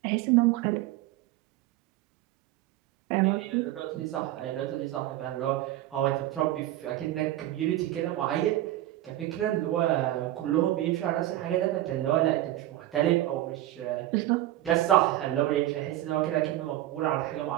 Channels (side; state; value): left; quieter; 14.7 dB